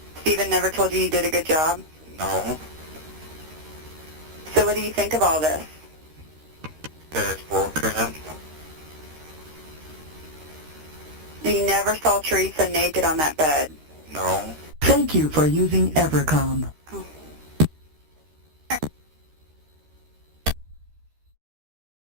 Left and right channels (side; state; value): left; late; 13 ms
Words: Steven never told you you did a good job? No. So what do you think of all this? That's bullcrap. You never saw Teresa naked on that bed? No. Thank you for using Evercom.